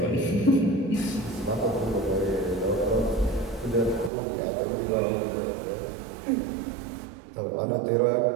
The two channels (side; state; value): left; drops out; at 4.1 s